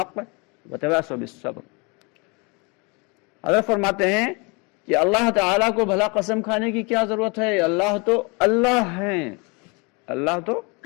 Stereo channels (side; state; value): right; quieter; 30.0 dB